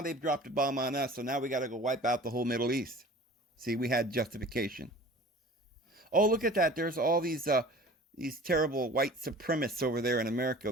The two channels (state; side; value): normal; both; correlation 0.44